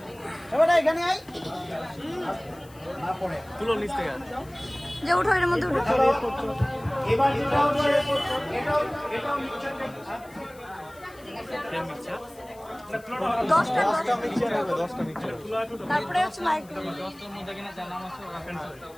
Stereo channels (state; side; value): noise; left; hiss, 25 dB below the sound